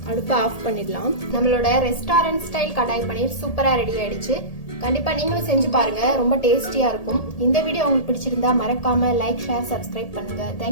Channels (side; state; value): right; late; 1.8 ms